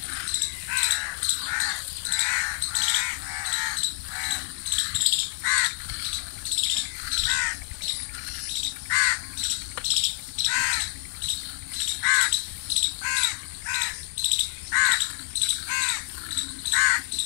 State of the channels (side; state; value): right; silent; 60 dB below the other